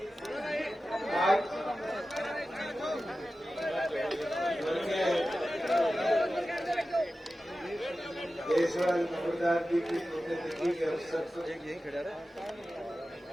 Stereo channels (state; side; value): normal; both; correlation 0.94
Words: देशवाल नंबरदार जी की पुण्यतिथि के अवसर पर